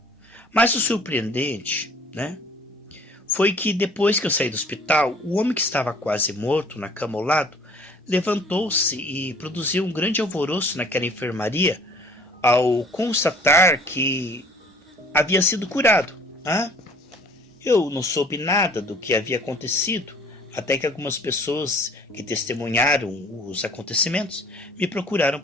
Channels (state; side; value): normal; both; correlation 0.52